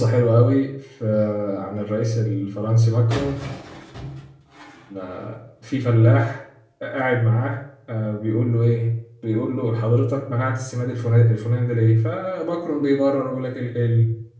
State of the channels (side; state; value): both; identical; correlation 1.00